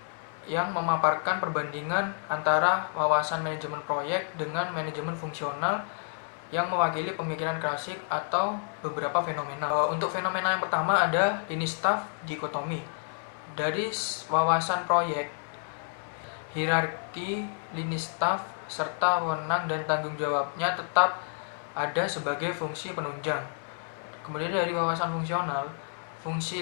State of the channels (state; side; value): silent; right; 58 dB below the other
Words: yang memaparkan perbandingan antara wawasan manajemen proyek dengan manajemen fungsional yang mewakili pemikiran klasik atau beberapa fenomena. Untuk fenomena yang pertama ada lini staff dikotomi. Dari wawasan proyek, hierarki lini staff serta wewenang dan tanggung jawabnya tetap ada sebagai fungsi penunjang. Kemudian dari wawasan fungsional, fungsi